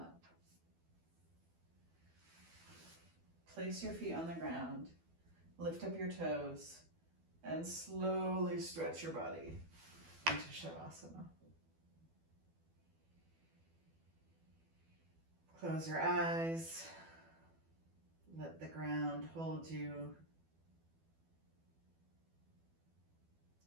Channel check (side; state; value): left; late; 12 ms